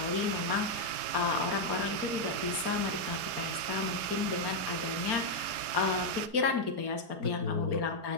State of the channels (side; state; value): left; late; 5.1 ms